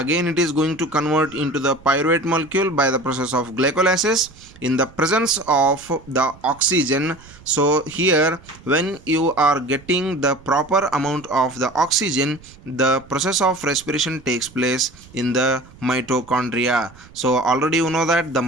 it is going to convert into the pyruvate molecule by the process of glycolysis in the presence of the oxygen. So here when you are getting the proper amount of the oxygen, the process of respiration takes place in the mitochondria. So already you know that the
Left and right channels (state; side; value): noise; right; rumble, 23 dB below the sound